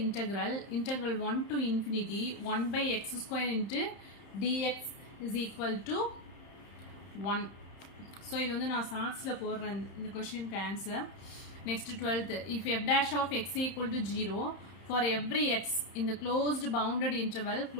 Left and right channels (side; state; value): right; late; 31 ms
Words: integral 1 to infinity 1 by x square into dx is equal to 1. So இது வந்து நான் ஷார்ட்ஸில் போடுறேன் இந்த கொஷினுக்கு answer. Next 12th, if f dash of x equal to 0 for every x in the closed bounded